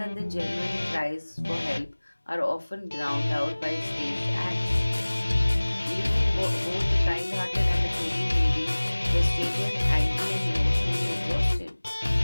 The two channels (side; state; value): both; inverted; correlation -1.00